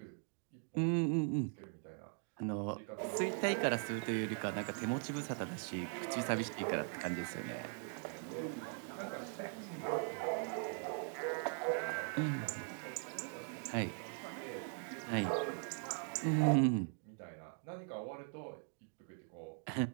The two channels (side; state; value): left; silent; 51 dB below the other